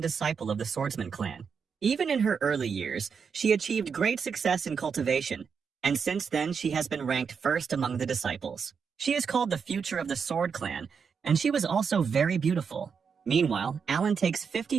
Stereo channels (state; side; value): quieter; left; 6.2 dB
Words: disciple of the Swordsman clan. Even in her early years, she achieved great success in cultivation, and since then she has been ranked first among the disciples. She is called the future of the Sword clan, and she was also very beautiful. Meanwhile, Alan takes